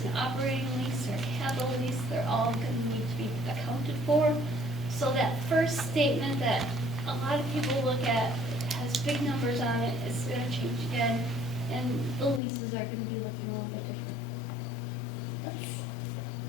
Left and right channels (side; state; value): right; drops out; at 12.4 s